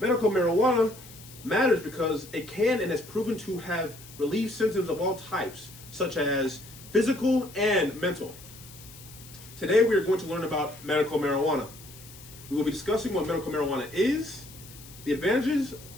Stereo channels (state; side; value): noise; left; hiss, 19 dB below the sound